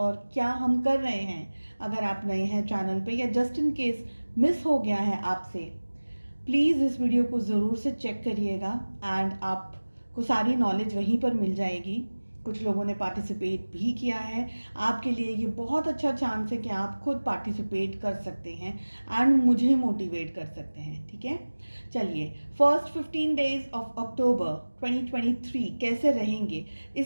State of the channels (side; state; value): both; inverted; correlation -1.00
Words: क्या हम कर रहे हैं। अगर आप नए हैं चैनल पे या जस्ट इन केस मिस हो गया है आपसे, प्लीज़ इस वीडियो को ज़रूर से चेक करिएगा एंड आपको सारी नॉलेज वहीं पर मिल जाएगी। कुछ लोगों ने पार्टिसिपेट भी किया है। आपके लिए ये बहुत अच्छा चांस है कि आप खुद पार्टिसिपेट कर सकते हैं एंड मुझे मोटिवेट कर सकते हैं। ठीक है, चलिए, फर्स्ट 15 डेज ऑफ अक्टूबर 2023 कैसे रहेंगे,